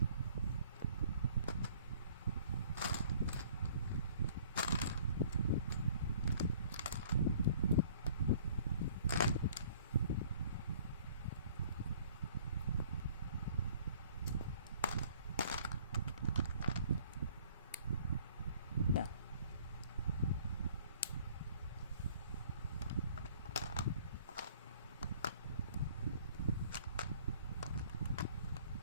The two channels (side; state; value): both; inverted; correlation -0.55